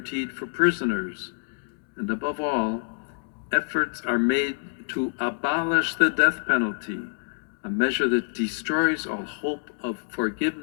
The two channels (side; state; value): right; silent; 61 dB below the other